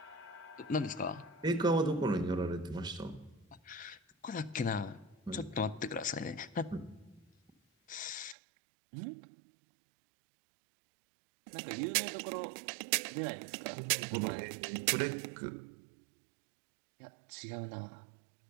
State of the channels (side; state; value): left; drops out; at 8.3 s